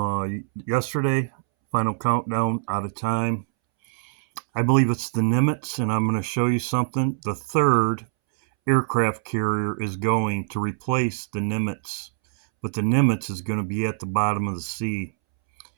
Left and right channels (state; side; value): silent; left; 63 dB below the other